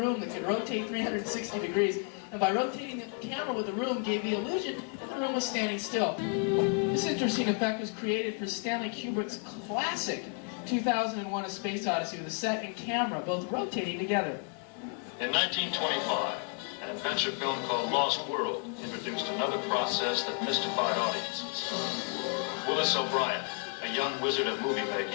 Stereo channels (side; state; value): right; quieter; 39.4 dB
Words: that could rotate 360 degrees, and by rotating the camera with the room gave the illusion that the room was standing still. This interesting effect was created for Stanley Kubrick's classic 2001: A Space Odyssey, with the set and camera both rotating together. In 1925, an adventure film called Lost World introduced another process that mystified audiences. Willis O'Brien, a young wizard of movie